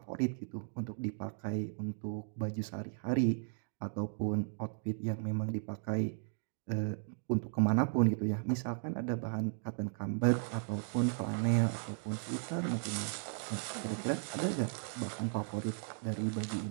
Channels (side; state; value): left; silent; 54 dB below the other